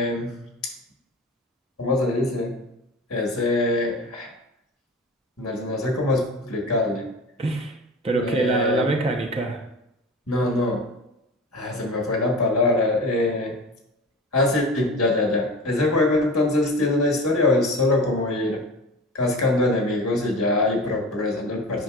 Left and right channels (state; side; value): normal; both; correlation 0.34